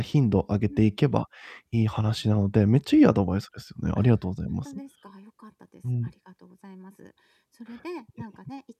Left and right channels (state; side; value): identical; both; correlation 1.00